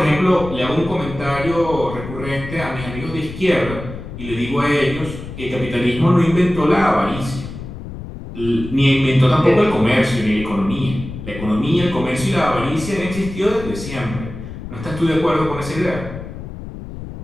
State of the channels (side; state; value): left; noise; rumble, 10 dB below the sound